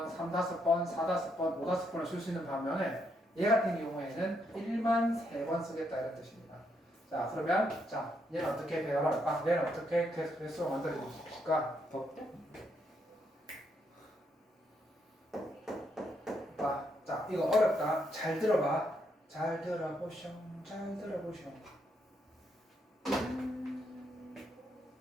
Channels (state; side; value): normal; both; correlation 0.76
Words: 3, 5번, 4, 5번, 5, 5번을 쓸 수 있는 반면에 얘 같은 경우에는 1만 3번 쓰겠다 이런 뜻입니다. 자 그러면 자 얘는 어떻게 배열할까? 얘는 어떻게 개수로 만들어줄까? 자 이거 어렵다. 잘 들어봐. 잘 들어보쇼. 잘 들어보쇼.